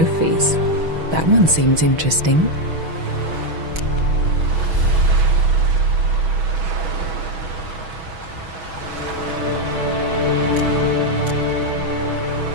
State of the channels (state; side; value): late; left; 6.2 ms